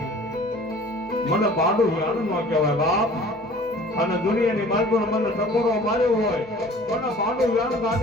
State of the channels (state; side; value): normal; both; correlation 0.48